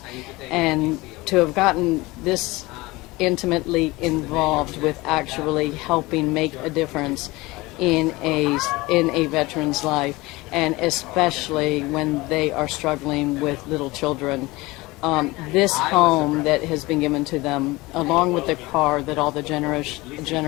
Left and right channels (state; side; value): quieter; right; 21.5 dB